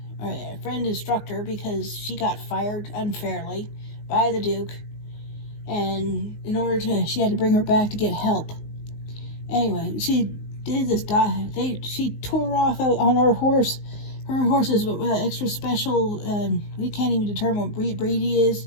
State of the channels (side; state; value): right; late; 19 ms